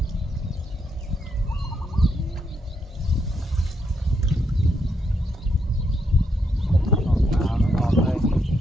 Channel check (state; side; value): normal; both; correlation 0.78